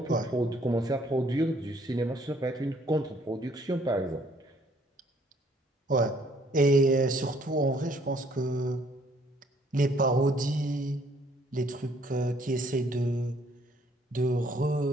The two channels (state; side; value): normal; both; correlation 0.63